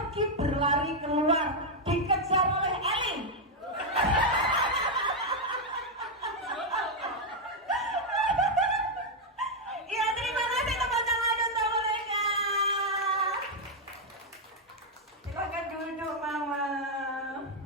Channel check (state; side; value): normal; both; correlation 0.00